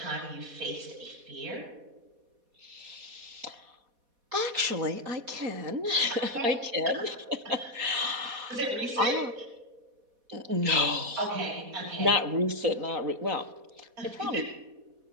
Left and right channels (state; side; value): late; left; 4.1 ms